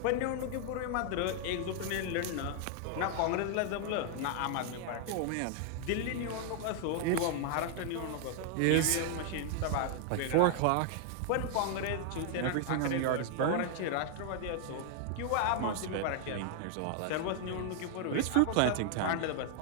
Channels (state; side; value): different; both; correlation 0.00